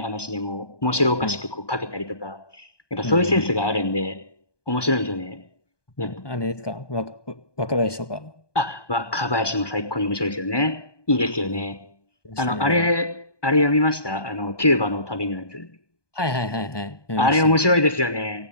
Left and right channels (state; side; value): late; right; 1.2 ms